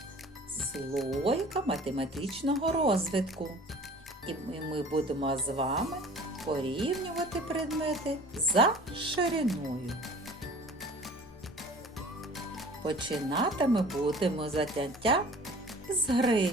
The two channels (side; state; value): both; normal; correlation 0.46